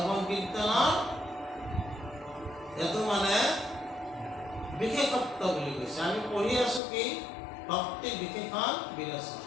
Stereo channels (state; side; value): drops out; right; at 6.8 s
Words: কীৰ্তনৰ এইটো মানে বিশেষত্ব বুলি কৈছে। আমি পঢ়ি আছো কি ভক্তি বিশেষণ বিৰচন।